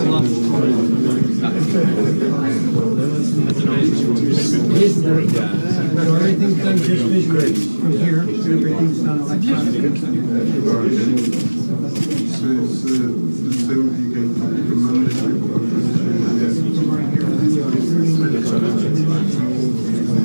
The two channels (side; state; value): both; inverted; correlation -1.00